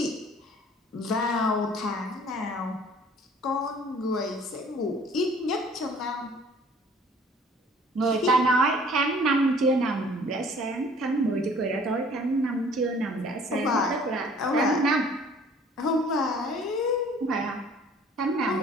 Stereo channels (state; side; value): normal; both; correlation 0.53